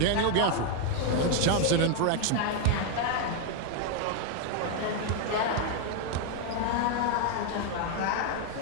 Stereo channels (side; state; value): both; different; correlation 0.01